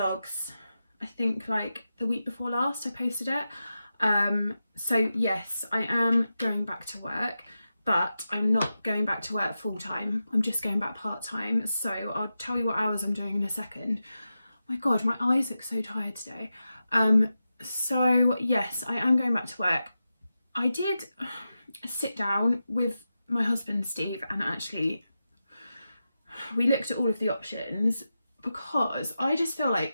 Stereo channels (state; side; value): inverted; both; correlation -0.91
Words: I think like the week before last I posted it. So yes, I am going back to work, but I'm not going back to work full time. I'm just going back part time. So I'll tell you what hours I'm doing in a second. My God, my eyes look so tired today. So yes, I am going back to work. I did sit down with my husband Steve and actually we looked at all of the options, because I just feel